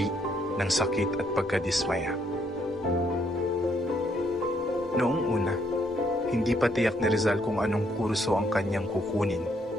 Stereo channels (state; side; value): normal; both; correlation 0.71